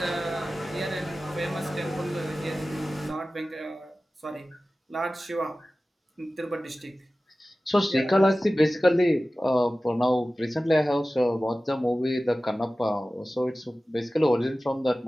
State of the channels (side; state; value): both; normal; correlation 0.96